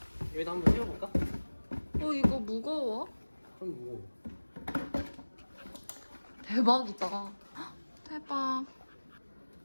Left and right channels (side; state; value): both; inverted; correlation -1.00